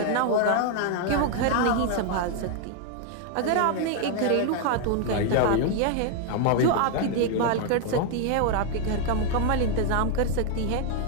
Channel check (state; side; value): different; both; correlation 0.00